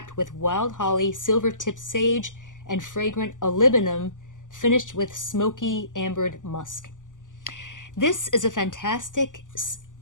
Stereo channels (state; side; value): late; right; 0.87 ms